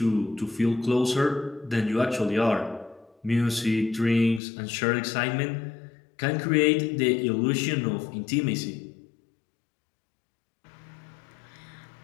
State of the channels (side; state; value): right; drops out; at 4.4 s